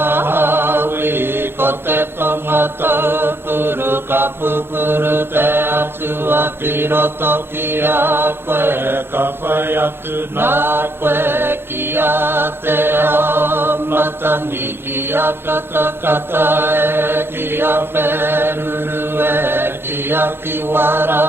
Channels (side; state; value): left; late; 0.11 ms